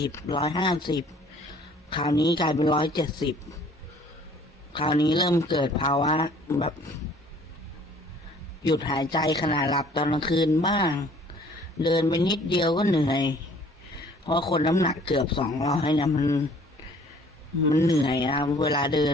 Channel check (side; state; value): both; normal; correlation 0.55